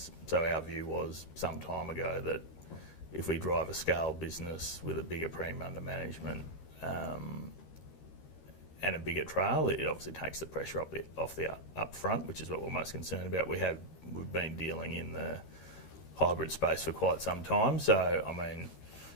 So our view was some time ago that if we drive a scaled business with a bigger premium under management and a bigger trail, it obviously takes the pressure off the up front, which is what we're most concerned about. We've been dealing in the hybrid space for quite some time. So, I mean,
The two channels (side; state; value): right; late; 13 ms